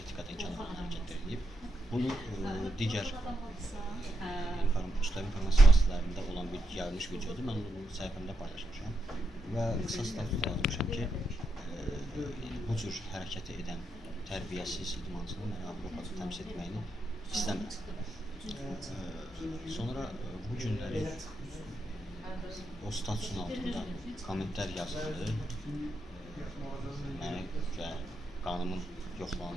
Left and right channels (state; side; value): normal; both; correlation 0.82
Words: etikadan kənar hərəkətlər edib. Bunu digər informasiya vasitələrində olan bir yayılmış videodur. Mən onu səhifəmdə paylaşmışam və qısa status yazmışam ki, bu cür hərəkəti edən tərbiyəsiz idmançının mənə Avropada təmsil etməyini istəmirəm. Sonra bu günləri o statusun altında kommentlər yazıldı. Mənə qanımın